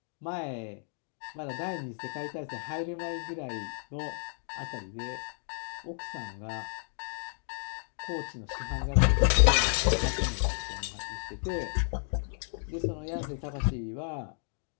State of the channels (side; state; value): right; silent; 56 dB below the other